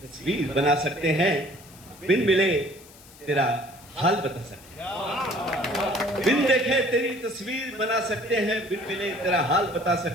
तस्वीर बना सकते हैं, बिन मिले तेरा हाल बता सकते हैं. बिन देखे तेरी तस्वीर बना सकते हैं, बिन मिले तेरा हाल बता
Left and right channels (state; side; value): noise; left; hiss, 22 dB below the sound